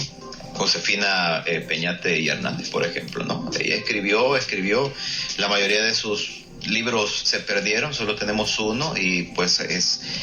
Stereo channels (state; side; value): identical; both; correlation 1.00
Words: Josefina Peñate y Hernández, por ejemplo, ¿no? Ella escribió la mayoría de sus libros se perdieron, solo tenemos uno, y pues